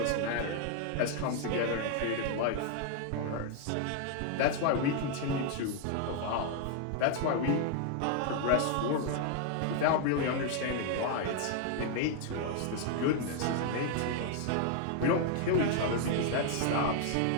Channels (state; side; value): different; both; correlation 0.00